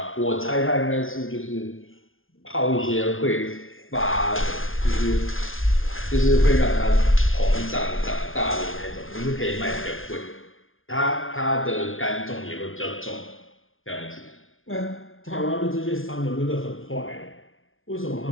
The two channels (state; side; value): late; right; 0.59 ms